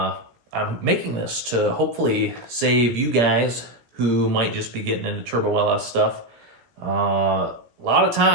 making this to hopefully save you guys who might just be getting into turbo LS stuff a lot of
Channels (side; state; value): left; late; 17 ms